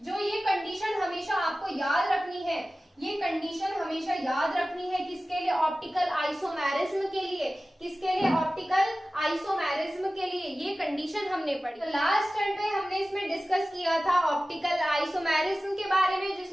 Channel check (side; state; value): both; normal; correlation 0.96